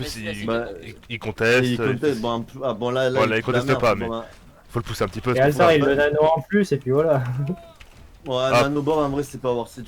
Mais il Bah, il conteste. Et il conteste, bon, bon là, Ouais, là, il fout la conteste merde, pas, bon, mais- bah. Faut le pousser un petit peu. Et c'est pour ça. Altar il le nano en plus et puis voilà. Ouais, Ah. Nanobor en vrai c'est pas worth it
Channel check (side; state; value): both; identical; correlation 1.00